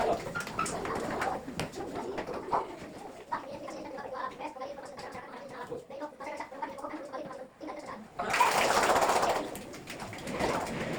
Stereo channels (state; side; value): identical; both; correlation 1.00